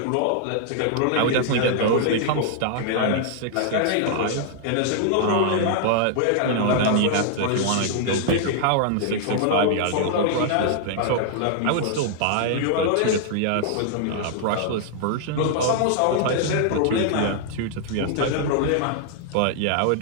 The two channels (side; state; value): both; different; correlation -0.01